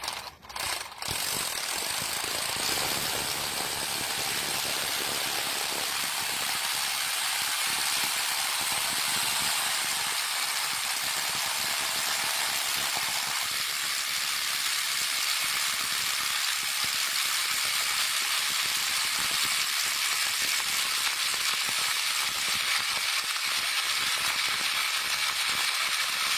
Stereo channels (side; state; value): both; identical; correlation 1.00